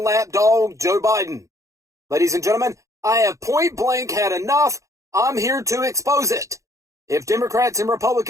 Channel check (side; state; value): left; late; 0.15 ms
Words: lapdog Joe Biden. Ladies and gentlemen, I have point blank had enough. I'm here to expose it. If Democrats and